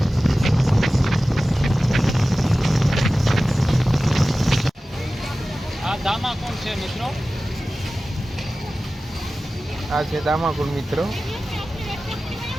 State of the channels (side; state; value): both; normal; correlation 0.96